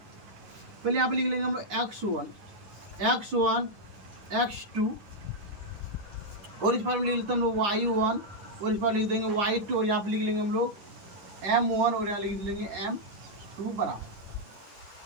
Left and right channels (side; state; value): left; late; 9.9 ms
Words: पहले यहाँ पे लिख लेंगे हम लोग x1, x2, और इस पर लिख लेते हैं हम लोग y1, और इस पर लिख देंगे y2, और यहाँ पे लिख लेंगे हम लोग m1, और यहाँ लिख लेंगे m2